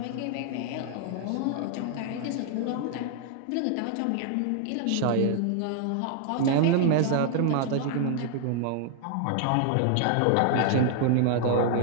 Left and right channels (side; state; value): both; different; correlation 0.00